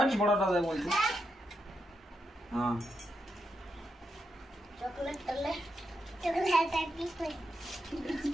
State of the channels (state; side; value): normal; both; correlation 0.84